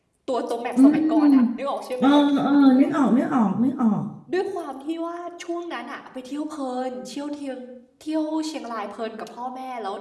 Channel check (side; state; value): both; identical; correlation 1.00